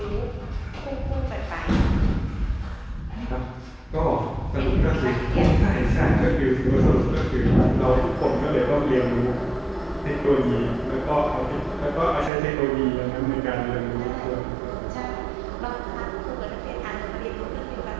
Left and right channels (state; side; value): drops out; left; at 12.3 s